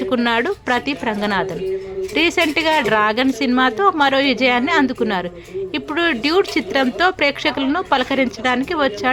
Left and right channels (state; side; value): identical; both; correlation 1.00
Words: ప్రదీప్ రంగనాథన్. రీసెంట్గా డ్రాగన్ సినిమాతో మరో విజయాన్ని అందుకున్నారు. ఇప్పుడు డ్యూడ్ చిత్రంతో ప్రేక్షకులను పలకరించడానికి